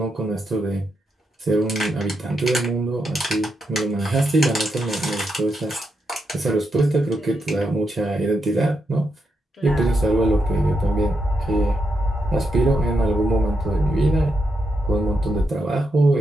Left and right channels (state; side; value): normal; both; correlation 0.83